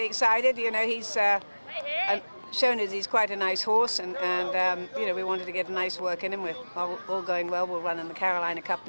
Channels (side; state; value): both; inverted; correlation -1.00